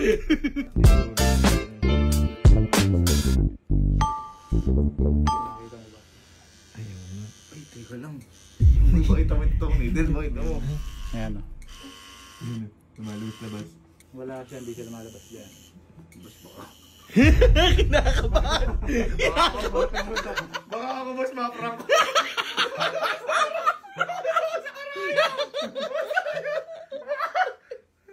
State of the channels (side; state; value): both; identical; correlation 1.00